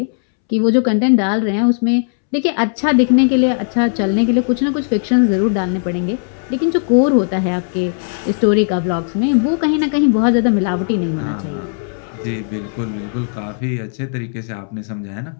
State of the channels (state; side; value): silent; right; 68 dB below the other